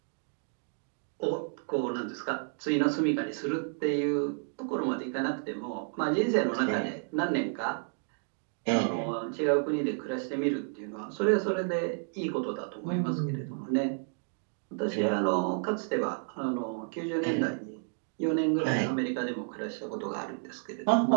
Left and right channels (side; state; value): left; silent; 57 dB below the other